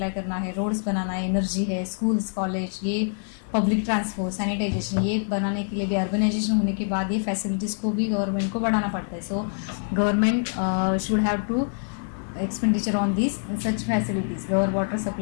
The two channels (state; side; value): silent; right; digital silence